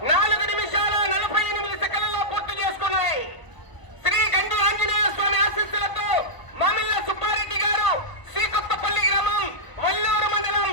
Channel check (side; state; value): right; late; 1.0 ms